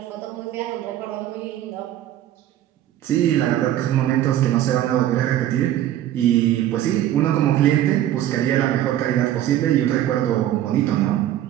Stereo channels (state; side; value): quieter; left; 12.4 dB